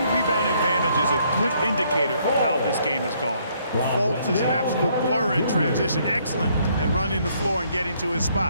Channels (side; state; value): both; inverted; correlation -0.68